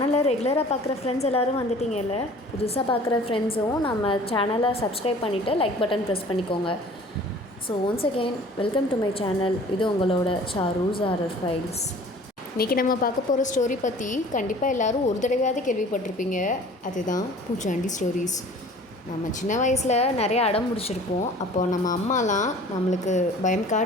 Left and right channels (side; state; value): both; normal; correlation 0.48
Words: ரெகுலராக பார்க்குற ஃப்ரெண்ட்ஸ் எல்லோரும் வந்துட்டிங்கல்ல, புதுசாக பார்க்குற ஃப்ரெண்ட்ஸும் நம்ம சேனலை சப்ஸ்கிரைப் பண்ணிவிட்டு லைக் பட்டன் ப்ரெஸ் பண்ணிக்கோங்க. So once again welcome to my channel. இது உங்களோட சாரூஸ் ஹாரர் ஃபைல்ஸ். இன்றைக்கி நம்ம பார்க்க போகிற ஸ்டோரி பற்றி கண்டிப்பாக எல்லோரும் ஒரு தடவையாவது கேள்விப்பட்டிருப்பீங்க. அதுதான் பூச்சாண்டி ஸ்டோரிஸ். நம்ம சின்ன வயசில் நிறைய அடம் முடிச்சிருப்போம். அப்போது நம்ம அம்மாலாம் நம்மளுக்கு பயம்